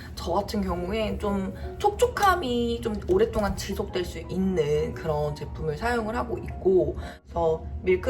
저 같은 경우에 좀 촉촉함이 좀 오랫동안 지속될 수 있는 그런 제품을 사용을 하고 있고, 그래서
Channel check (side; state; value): both; identical; correlation 1.00